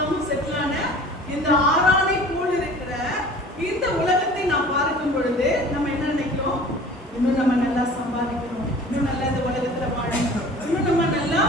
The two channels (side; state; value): both; normal; correlation 0.44